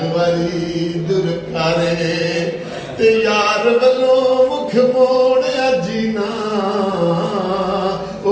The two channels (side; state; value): both; identical; correlation 1.00